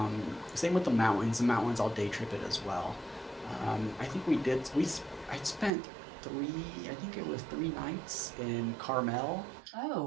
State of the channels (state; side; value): drops out; left; at 5.7 s